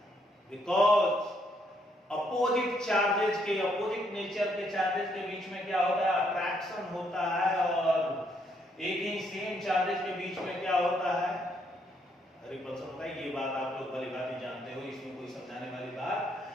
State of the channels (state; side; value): normal; both; correlation 0.72